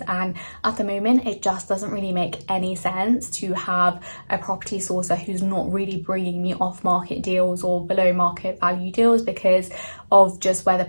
and at the moment it just doesn't really make any sense to have a property sourcer who's not really bringing me off market deals or below market value deals because of just where the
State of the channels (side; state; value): both; inverted; correlation -1.00